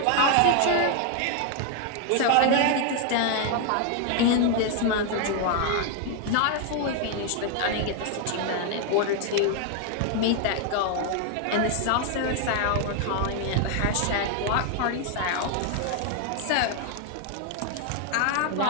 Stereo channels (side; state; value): both; different; correlation 0.00